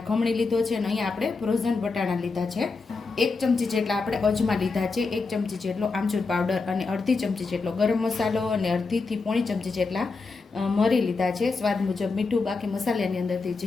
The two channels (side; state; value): right; quieter; 4.2 dB